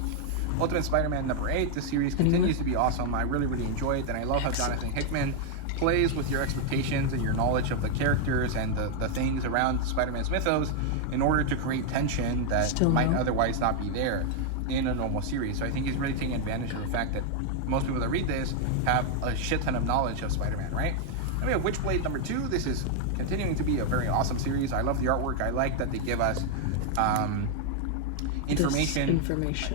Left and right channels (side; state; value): both; different; correlation 0.00